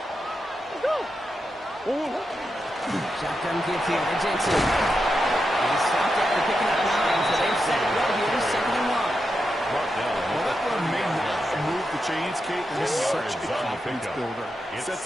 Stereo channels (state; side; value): normal; both; correlation 0.87